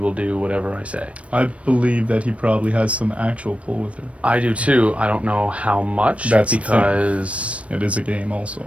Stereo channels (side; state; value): left; late; 0.063 ms